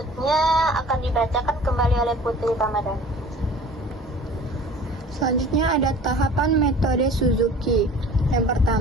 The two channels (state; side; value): normal; both; correlation 0.45